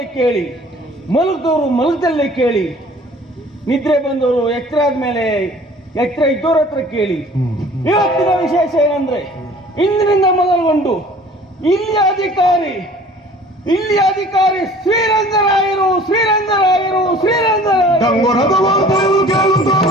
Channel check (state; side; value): normal; both; correlation 0.49